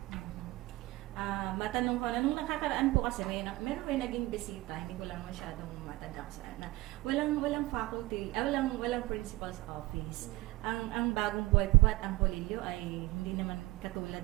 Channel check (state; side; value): quieter; left; 20.3 dB